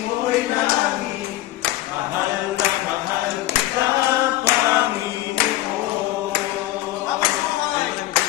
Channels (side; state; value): right; quieter; 16.0 dB